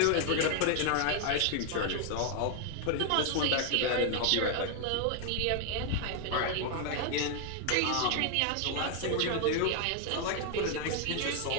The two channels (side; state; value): both; different; correlation 0.00